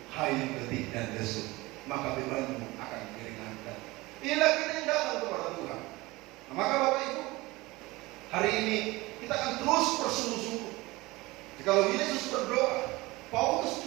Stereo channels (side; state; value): left; quieter; 21.2 dB